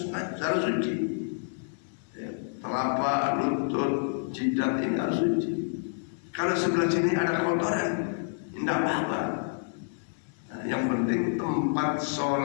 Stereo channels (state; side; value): silent; right; digital silence